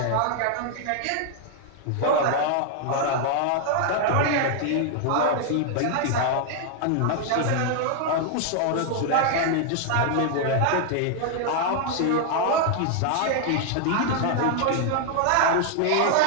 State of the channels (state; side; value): different; both; correlation 0.00